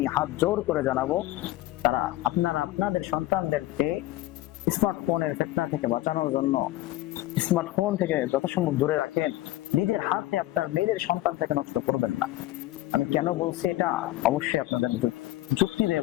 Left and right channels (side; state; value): right; quieter; 16.6 dB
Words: হাত জোর করে জানাবো, তারা আপনারা আপনাদের সন্তানদেরকে স্মার্টফোনের ফিতনা থেকে বাঁচানোর জন্য স্মার্টফোন থেকে যথাসম্ভব দূরে রাখেন। নিজের হাতে আপনার নিজের সন্তান থেকে নষ্ট করবেন না। আমি কেন বলছি এটা অবশ্যই আপনাদের যুক্তি দিয়ে